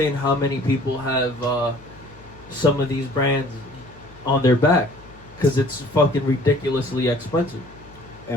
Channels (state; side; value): noise; left; hum, 24 dB below the sound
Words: how many people have some of these brands on their back because it's fucking ridiculously expensive.